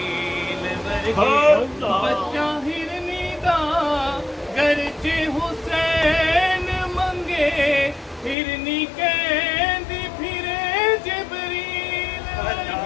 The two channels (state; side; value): drops out; right; at 8.3 s